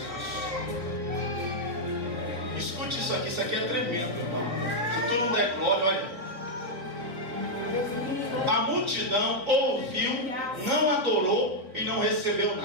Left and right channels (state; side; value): late; left; 3.3 ms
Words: Escute isso aqui é tremendo, irmão. Se tu não der glória, olha. A multidão ouviu, não adorou e não recebeu